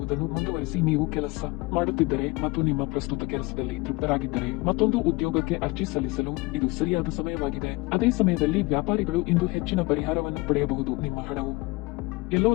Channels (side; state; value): right; quieter; 24.0 dB